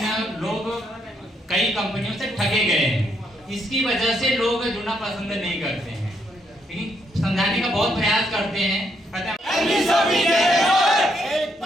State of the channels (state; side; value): normal; both; correlation 0.75